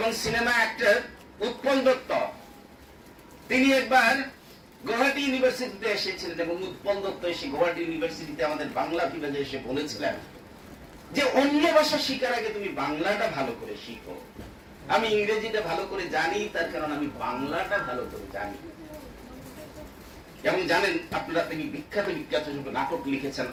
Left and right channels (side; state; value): both; identical; correlation 1.00